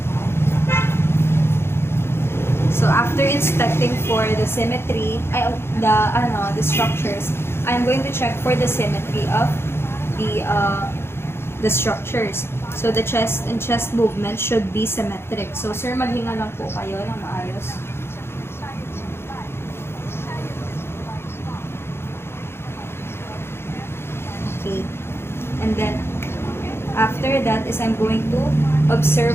So after inspecting for the symmetry, the structures, I'm going to check for the symmetry of the structures. So the chest and chest movement should be symmetric. So sir, maghinga lang po kayo ng maayos. Okay. And then after that is I'm going to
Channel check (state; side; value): late; right; 0.12 ms